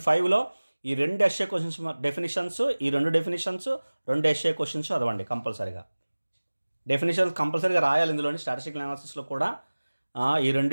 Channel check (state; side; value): inverted; both; correlation -1.00